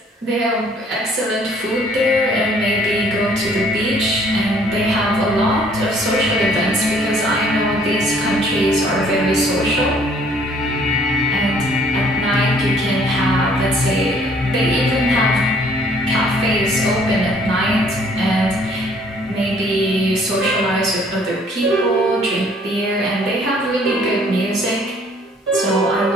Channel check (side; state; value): both; normal; correlation 0.59